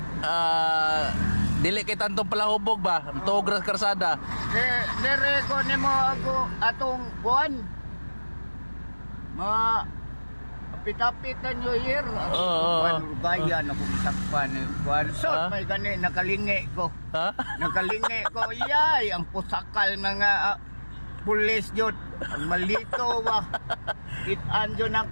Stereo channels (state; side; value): inverted; both; correlation -1.00